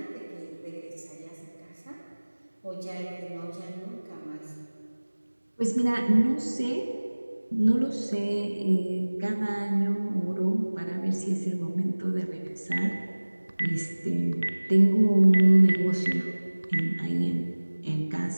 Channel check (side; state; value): both; inverted; correlation -1.00